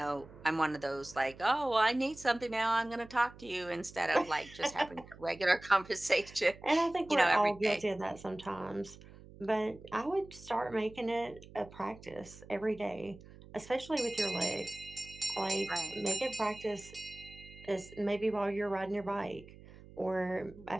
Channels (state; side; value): noise; right; hum, 19 dB below the sound